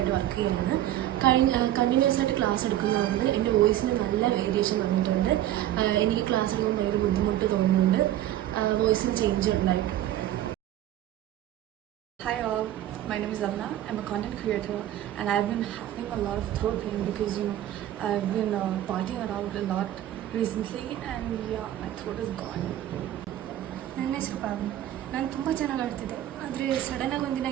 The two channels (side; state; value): left; quieter; 12.9 dB